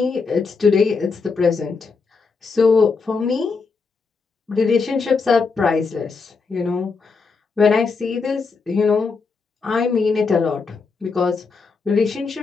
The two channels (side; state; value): right; quieter; 4.7 dB